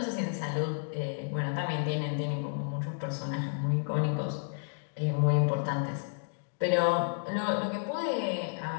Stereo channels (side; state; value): right; silent; digital silence